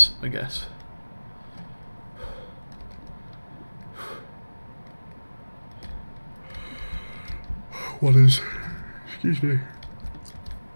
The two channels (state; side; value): inverted; both; correlation -1.00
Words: I guess. What is... excuse me.